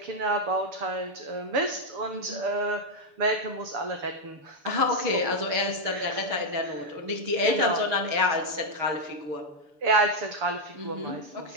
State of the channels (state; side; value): late; left; 6.8 ms